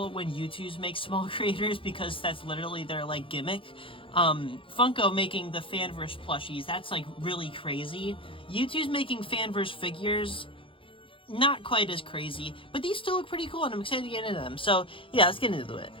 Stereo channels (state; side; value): late; right; 0.25 ms